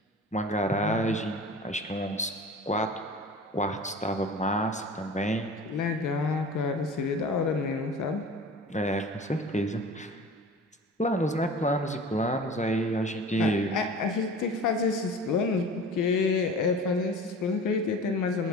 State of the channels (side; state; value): both; normal; correlation 0.39